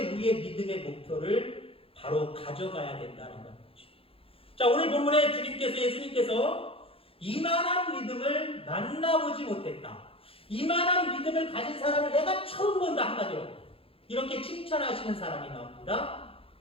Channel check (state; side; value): late; right; 0.27 ms